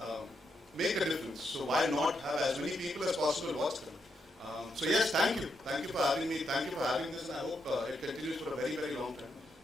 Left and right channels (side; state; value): both; normal; correlation 0.81